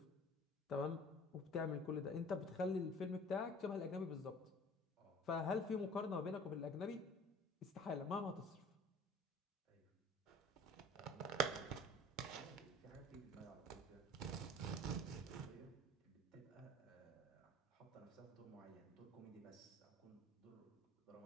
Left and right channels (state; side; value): normal; both; correlation 0.45